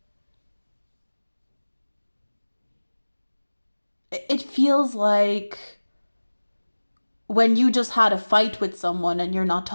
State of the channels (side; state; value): both; inverted; correlation -1.00